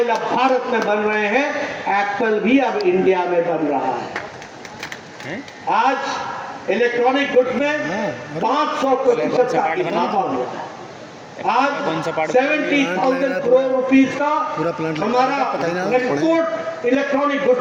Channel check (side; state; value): both; identical; correlation 1.00